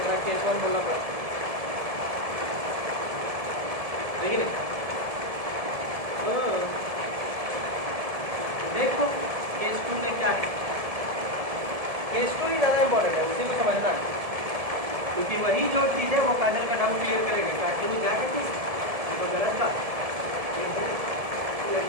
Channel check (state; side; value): late; left; 1.7 ms